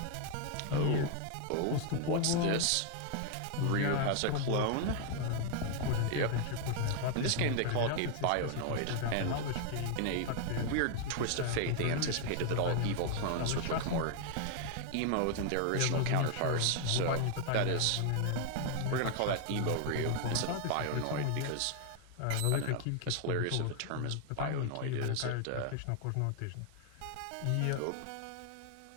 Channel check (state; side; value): different; both; correlation 0.00